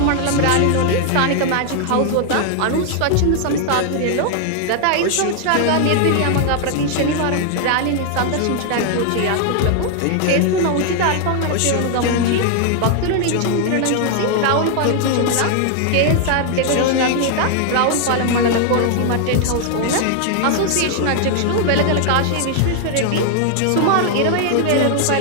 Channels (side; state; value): both; different; correlation 0.00